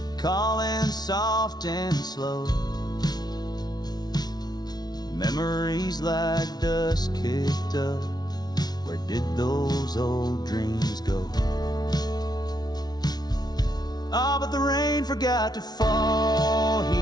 calling soft and slow. Memories like dust kicked up. Where did those old dreams go? Ah, but the rain forgot to fall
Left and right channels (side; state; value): right; late; 0.19 ms